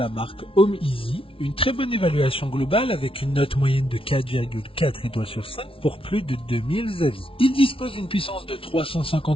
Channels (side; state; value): right; late; 0.26 ms